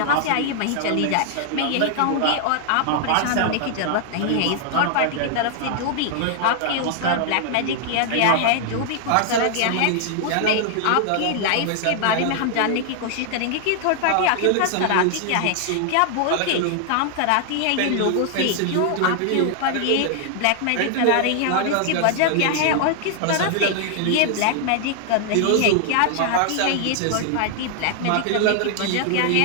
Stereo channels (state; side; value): different; both; correlation 0.00